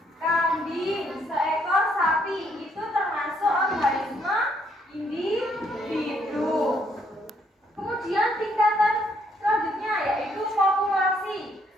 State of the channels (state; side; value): normal; both; correlation 0.70